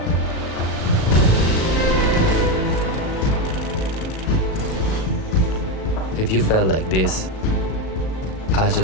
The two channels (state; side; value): late; right; 37 ms